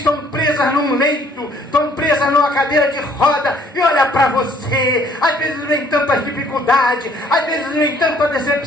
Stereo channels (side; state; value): both; normal; correlation 0.61